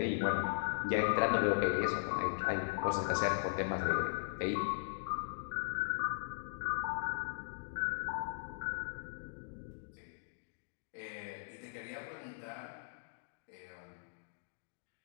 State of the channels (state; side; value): silent; right; digital silence